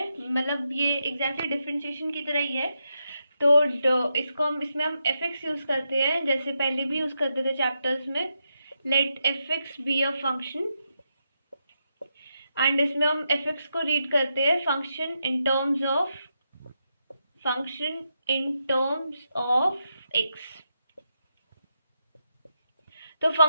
मतलब ये एग्जैक्टली डिफरेंशिएशन की तरह ही है। तो इसमें हम एफ एक्स यूज करते हैं, जैसे पहले भी यूज करते थे चैप्टर्स में। Let f x be a function, and इसमें हम एफ एक्स को रीड करते हैं function in terms of x. तो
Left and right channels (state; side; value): inverted; both; correlation -0.84